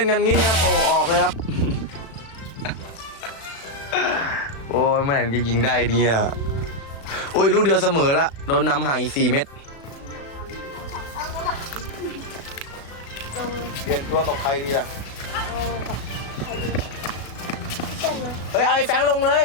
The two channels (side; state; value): right; late; 36 ms